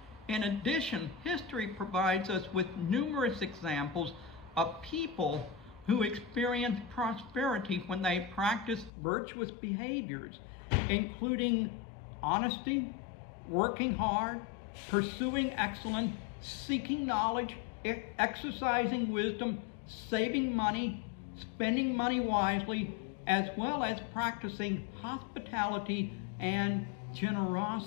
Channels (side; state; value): right; drops out; at 8.9 s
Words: In addition, history provides us with numerous examples of people who experienced prosperity when they practiced virtuous behaviors, including honesty, working hard, pursuing excellence, seeking knowledge, exercising wisdom, saving money, spending money wisely, as well as practicing hospitality and